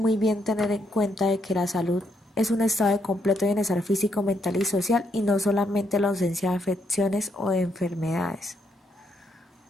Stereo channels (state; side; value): normal; both; correlation 0.75